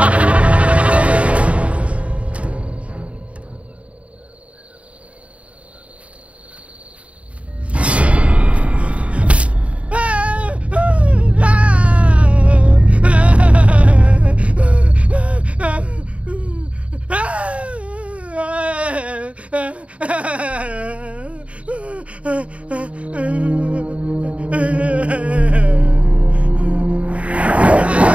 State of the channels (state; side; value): late; left; 0.064 ms